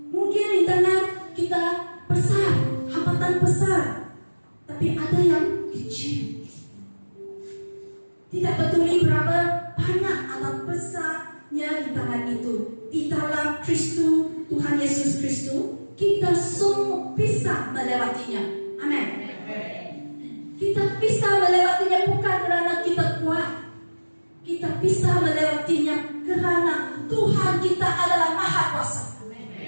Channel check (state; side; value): inverted; both; correlation -1.00